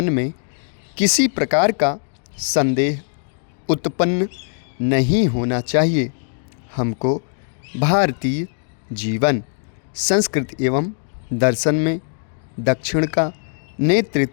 में किसी प्रकार का संदेह उत्पन्न नहीं होना चाहिए। हमको भारतीय जीवन, संस्कृति एवं दर्शन में दक्षिण का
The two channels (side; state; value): right; silent; digital silence